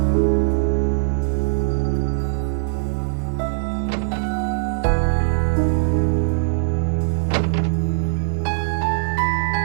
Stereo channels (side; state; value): left; silent; 65 dB below the other